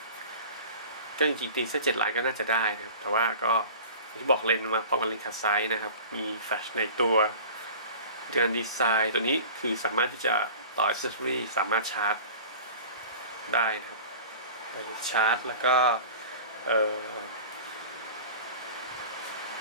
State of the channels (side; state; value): both; inverted; correlation -0.40